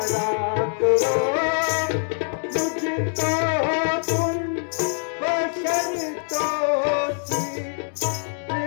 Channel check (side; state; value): right; silent; 63 dB below the other